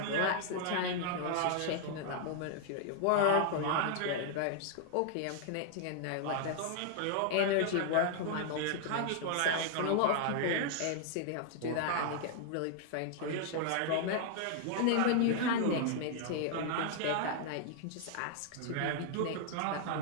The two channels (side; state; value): both; different; correlation 0.00